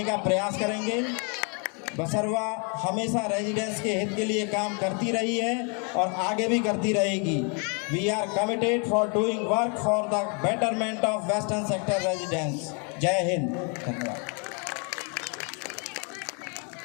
का प्रयास करेंगे। बसरवा हमेशा रेजिडेंट्स के हित के लिए काम करती रही है और आगे भी करती रहेगी। We are committed for doing work for the betterment of western sector residents. जय हिंद। धन्यवाद।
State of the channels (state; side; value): quieter; right; 36.9 dB